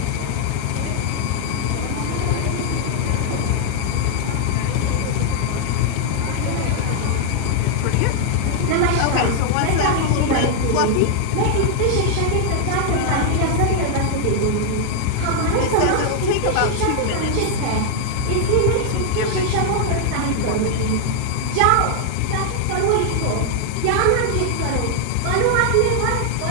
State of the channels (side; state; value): both; different; correlation 0.00